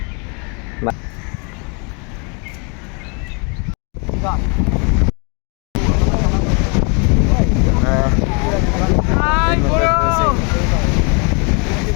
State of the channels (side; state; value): right; quieter; 34.1 dB